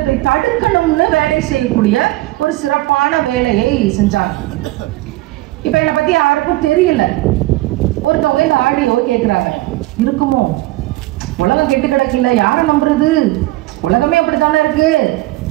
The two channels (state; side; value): quieter; left; 18.7 dB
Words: தடுக்கணும்னு வேலை செய்யக்கூடிய ஒரு சிறப்பான வேலையை செஞ்சாங்க. இப்ப என்னை பத்தி யாருக்கும் தெரியல. ஒருத்தவங்க இந்த ஆடியோ கேட்கிறாங்க, இருக்குமோ, உலகம் கெட்டு கிடக்கல, யாரை நம்புறது, உலகமே அப்படித்தானே இருக்கு,